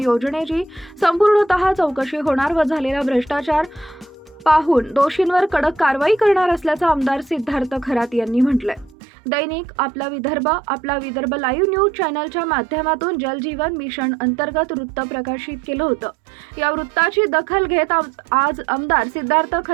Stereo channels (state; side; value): drops out; left; at 9.0 s